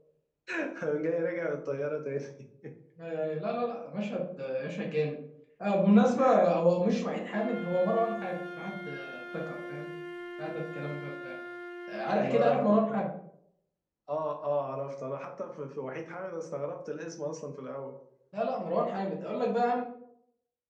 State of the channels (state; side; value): identical; both; correlation 1.00